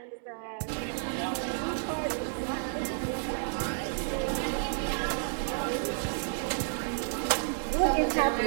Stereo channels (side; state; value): left; silent; digital silence